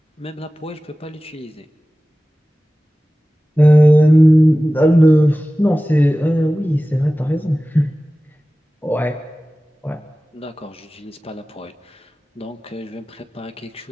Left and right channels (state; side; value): normal; both; correlation 0.97